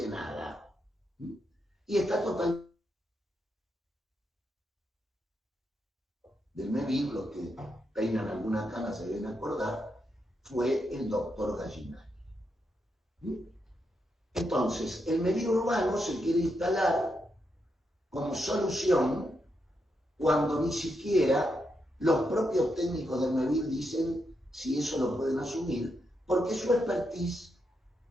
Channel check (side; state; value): both; normal; correlation 0.83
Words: nada. Y está totalmente del MEVIR, los que peinan alguna cana se deben acordar, fue el doctor Gallinari. Entonces, el MEVIR urbano se quiere instalar como solución cuando ni siquiera los propios técnicos del MEVIR dicen si eso lo pueden asumir, porque su expertise